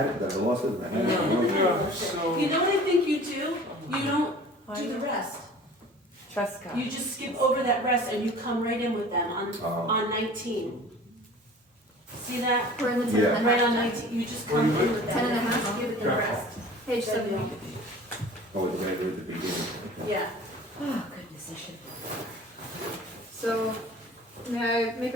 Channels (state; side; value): normal; both; correlation 0.44